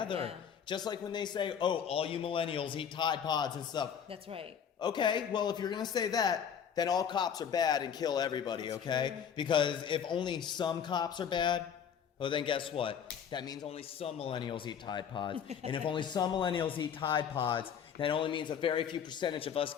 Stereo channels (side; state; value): right; quieter; 7.9 dB